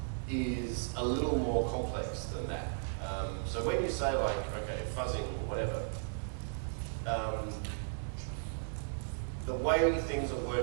is a little more complex than that. So when you say like, okay, fuzzing or whatever, the way things are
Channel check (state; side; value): silent; left; digital silence